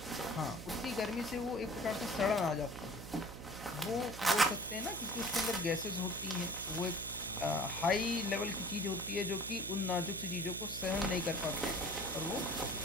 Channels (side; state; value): right; noise; hum, 11 dB below the sound